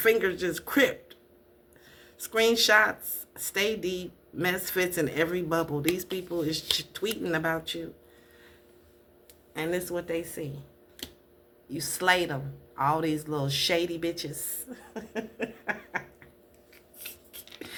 just cripped. Screenshots, stay deep, mess fits in every bubble. These people is tweeting about you. And this is what they see. You slayed them. All these little shady bitches.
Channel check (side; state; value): both; identical; correlation 1.00